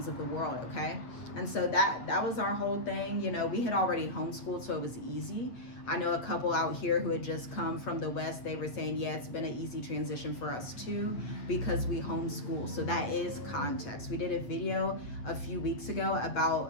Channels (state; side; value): late; right; 8.4 ms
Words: of the world, okay? And so that was our whole thing. We had already homeschooled, so it was easy. I know a couple out here who had just come from the West. They were saying, yeah, it's been an easy transition for us too, because we homeschool. So that is context. We did a video a few days ago